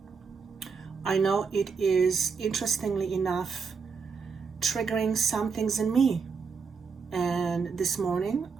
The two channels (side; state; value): left; quieter; 5.4 dB